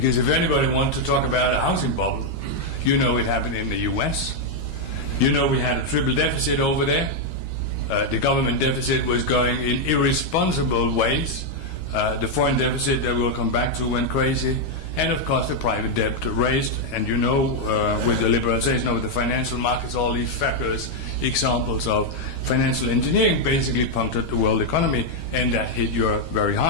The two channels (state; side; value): late; right; 13 ms